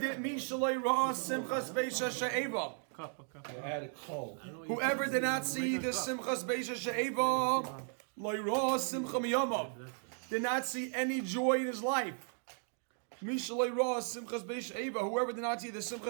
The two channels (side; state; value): left; silent; 54 dB below the other